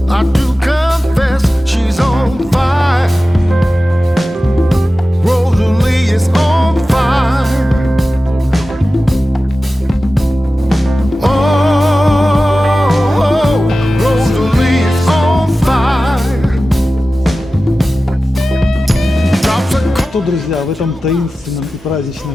I do confess she's on fire. Rosalie is on fire. Oh, Rosalie is on fire. Drops a Что, друзья, в этом таинственном и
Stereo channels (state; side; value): normal; both; correlation 0.95